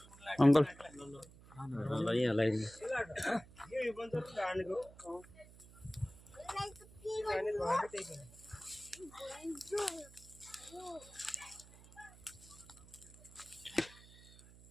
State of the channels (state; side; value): noise; right; hum, 21 dB below the sound